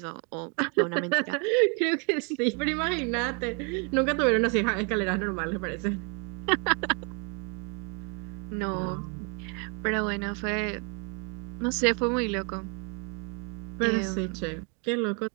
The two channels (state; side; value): quieter; left; 35.5 dB